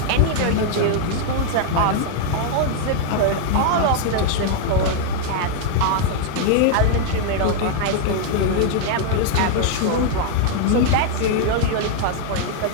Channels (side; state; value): both; different; correlation 0.00